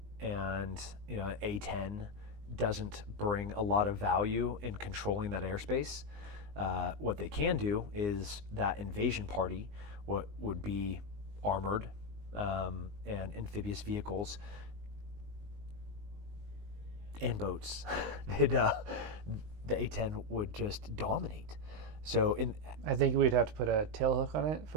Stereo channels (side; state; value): left; late; 19 ms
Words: A-10 doesn't bring a lot of value in controlling that airspace. What they can do is that invasion party, what would be armored and amphibious vehicles and boats, the A-10 would just dominate. So I think we'd have to put a tail hook on it